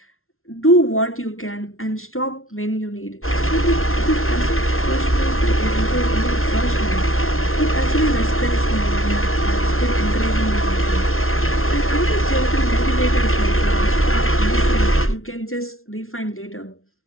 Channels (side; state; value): right; late; 0.62 ms